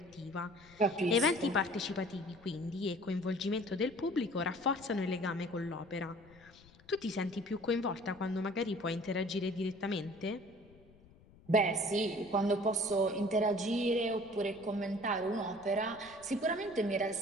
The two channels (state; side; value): noise; left; rumble, 25 dB below the sound